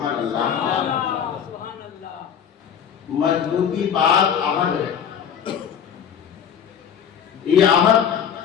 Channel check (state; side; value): quieter; right; 8.2 dB